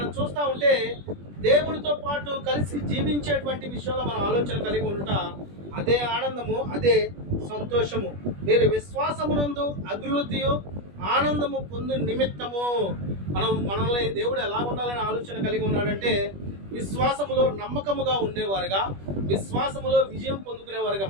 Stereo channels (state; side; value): late; left; 21 ms